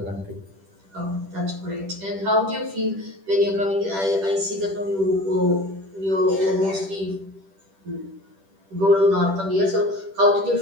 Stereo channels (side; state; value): left; late; 10 ms